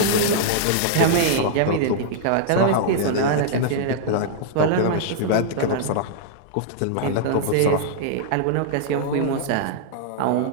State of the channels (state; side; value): different; both; correlation -0.01